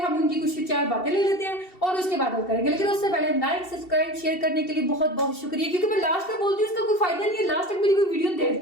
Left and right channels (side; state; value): right; late; 2.7 ms